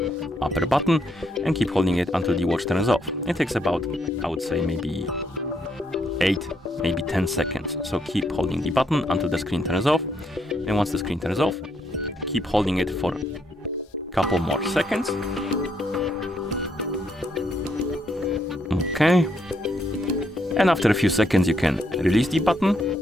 upper button and keep holding it until the watch turns off. It takes about, I would say, maybe 8, maybe 10 seconds. So keep holding the button until the screen turns off, and once the screen turns off, keep holding it for a couple more seconds. Okay, and after a few seconds you can release the button,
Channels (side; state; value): both; normal; correlation 0.75